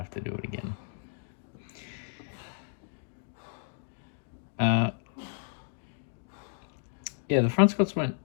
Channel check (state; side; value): silent; right; digital silence